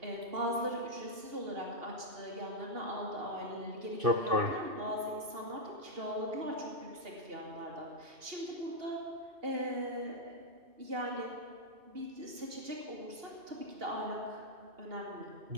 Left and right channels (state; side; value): late; left; 2.8 ms